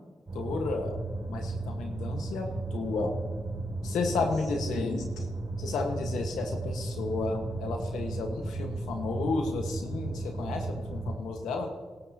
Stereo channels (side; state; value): both; normal; correlation 0.80